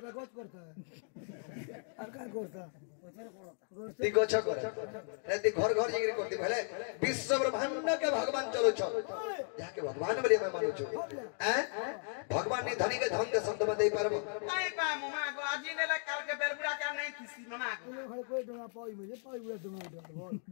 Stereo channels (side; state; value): right; silent; 54 dB below the other